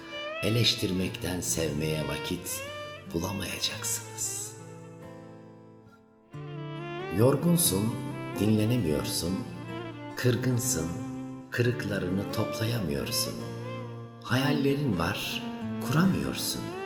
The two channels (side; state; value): both; identical; correlation 1.00